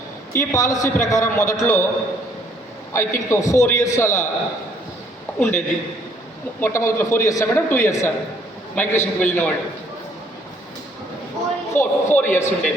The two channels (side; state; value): both; normal; correlation 0.64